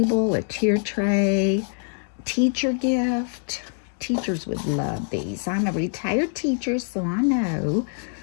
a tier tray, teacher gift. Teachers would love these. I'm a retired teacher, so I know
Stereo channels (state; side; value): silent; right; 57 dB below the other